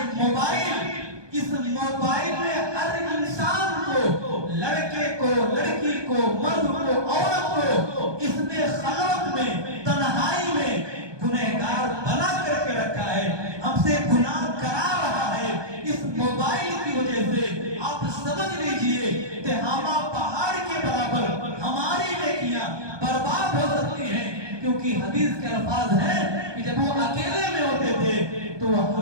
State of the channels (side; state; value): left; late; 1.2 ms